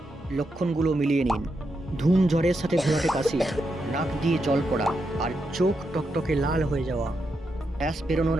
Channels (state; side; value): normal; both; correlation 0.84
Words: লক্ষণগুলো মিলিয়ে নিন: ধুম জ্বরের সাথে ঘোলাটে কাশি, নাক দিয়ে জল পড়া, আর চোখ টকটকে লাল হয়ে যাওয়া। গ্যাস বেরোনোর